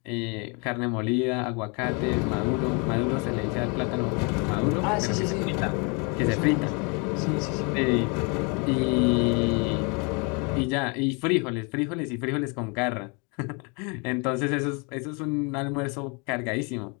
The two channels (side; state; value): right; quieter; 32.8 dB